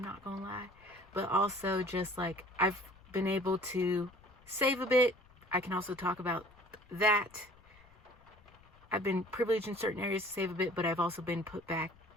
gonna lie, but also just like I've been able to save a bit. I can also talk about that. I've been privileged in certain areas to save a bit, but I've also been put back,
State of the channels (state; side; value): noise; left; rumble, 27 dB below the sound